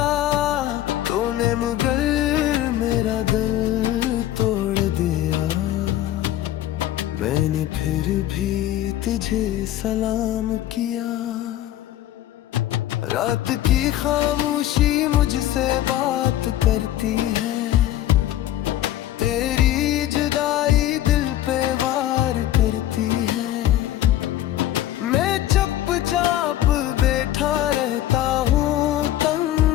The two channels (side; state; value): right; quieter; 13.2 dB